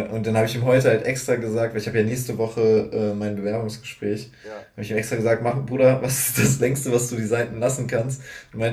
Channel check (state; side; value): identical; both; correlation 1.00